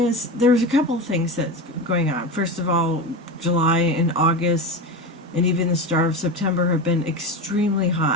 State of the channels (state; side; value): normal; both; correlation 0.23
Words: there's a couple of things that's going on. First of all, July and August and even the start of September have been extremely